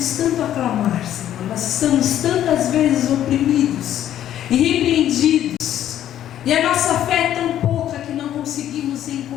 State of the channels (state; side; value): quieter; right; 11.4 dB